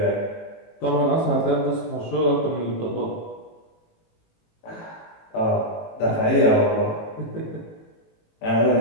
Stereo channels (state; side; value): late; right; 18 ms